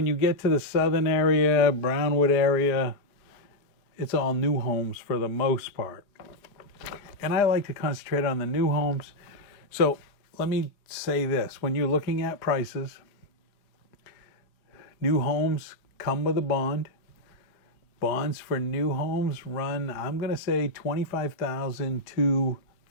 you get to the southern area, Brownwood area, it's all new homes for the most part. And I like to concentrate on the new homes. So let me say this. When you're looking at prices, new homes come with a bond. Bonds for new homes run, I'm going to say $25,000 to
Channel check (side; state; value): right; late; 4.8 ms